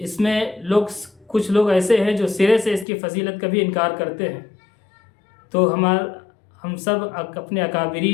میں کچھ لوگ ایسے ہیں جو سرے سے اس کی فضیلت کا بھی انکار کرتے ہیں۔ تو ہم سب اپنے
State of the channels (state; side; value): drops out; right; at 2.9 s